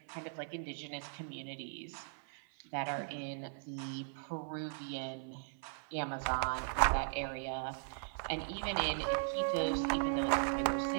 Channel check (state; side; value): silent; left; 52 dB below the other